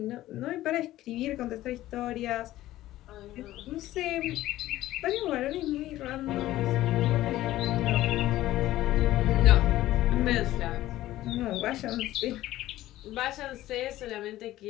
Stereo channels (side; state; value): right; quieter; 15.2 dB